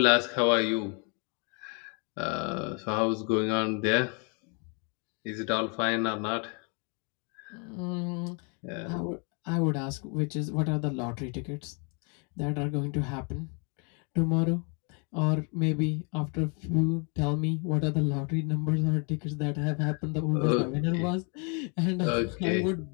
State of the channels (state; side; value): quieter; right; 36.2 dB